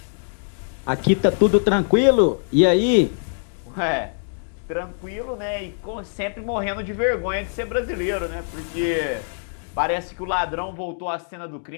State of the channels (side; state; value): right; silent; digital silence